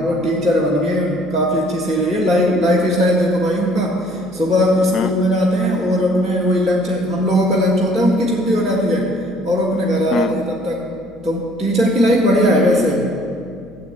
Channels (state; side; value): noise; left; hum, 26 dB below the sound